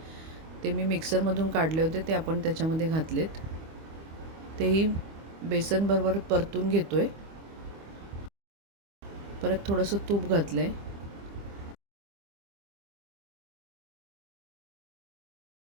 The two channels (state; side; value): late; left; 25 ms